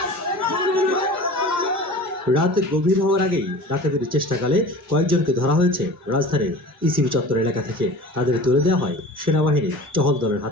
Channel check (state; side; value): normal; both; correlation 0.39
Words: রাত গভীর হওয়ার আগেই ডাকাতির চেষ্টাকালে কয়েকজনকে ধরা হয়েছে রাজধানীর ইসিবি চত্বর এলাকা থেকে। তাদের তুলে দেওয়া হয় সেনাবাহিনীর টহল দলের